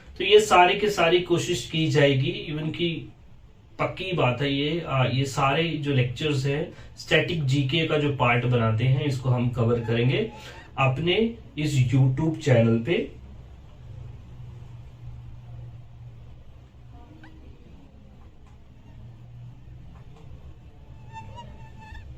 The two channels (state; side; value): identical; both; correlation 1.00